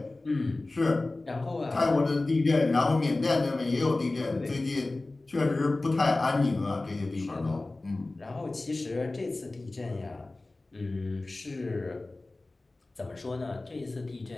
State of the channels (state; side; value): quieter; right; 3.0 dB